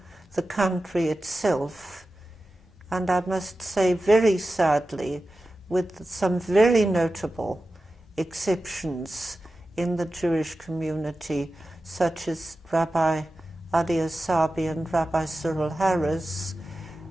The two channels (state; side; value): normal; both; correlation 0.94